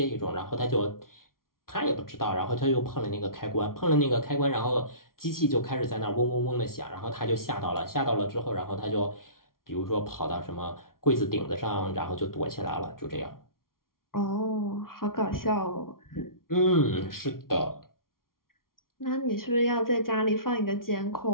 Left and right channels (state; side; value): late; right; 0.92 ms